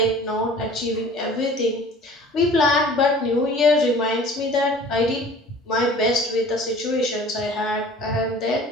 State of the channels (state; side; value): normal; both; correlation 0.46